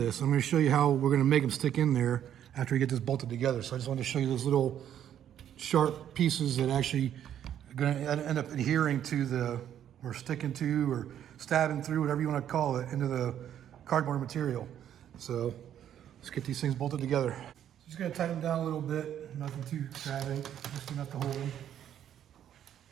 I'm going to show you how we're going to make them stick in there after we get this bolted together. So I just wanted to show you those little sharp pieces that actually are going to end up adhering to or sticking to, or stabbing through, whatever you want to call it, into the cardboard material. So let's get these things bolted together. Just going to tighten them down a little bit, nothing too extravagant, just enough to hold them.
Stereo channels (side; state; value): left; quieter; 10.2 dB